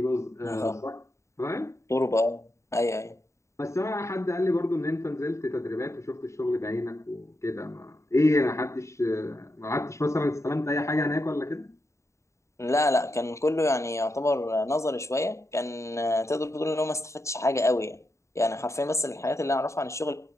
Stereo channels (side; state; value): right; late; 0.14 ms